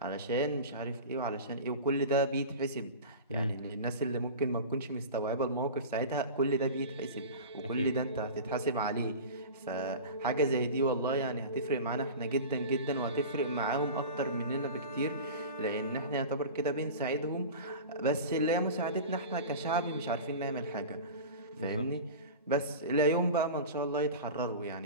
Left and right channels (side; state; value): both; inverted; correlation -0.32